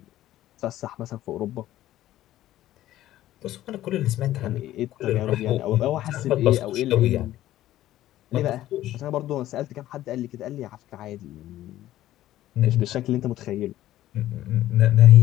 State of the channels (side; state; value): right; quieter; 14.0 dB